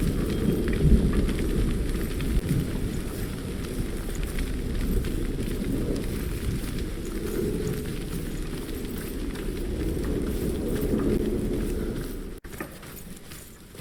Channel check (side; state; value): both; identical; correlation 1.00